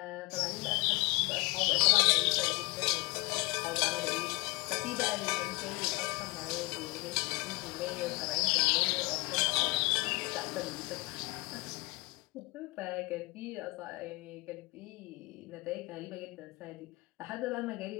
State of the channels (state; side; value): quieter; right; 25.2 dB